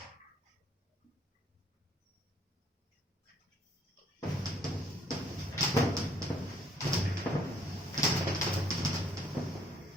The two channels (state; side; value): normal; both; correlation 0.64